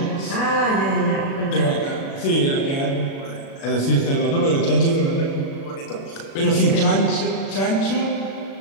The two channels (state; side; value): late; right; 36 ms